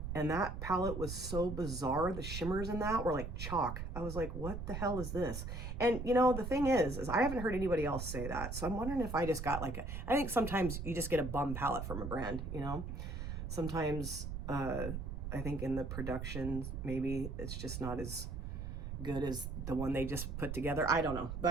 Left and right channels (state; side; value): noise; right; rumble, 6 dB below the sound